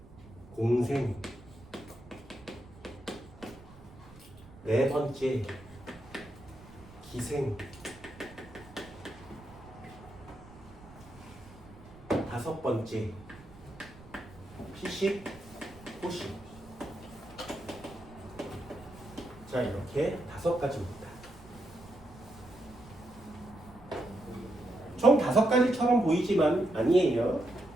공생. 네 번째, 기생. 다섯 번째, 피식, 호식. 자, 이렇게 5가지입니다. 총 5가지처럼 보이지만 아니에요.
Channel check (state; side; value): noise; right; rumble, 20 dB below the sound